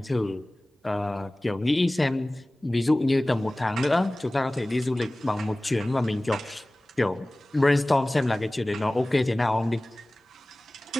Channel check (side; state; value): both; normal; correlation 0.98